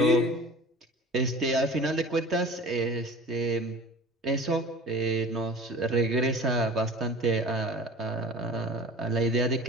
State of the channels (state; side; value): normal; both; correlation 0.41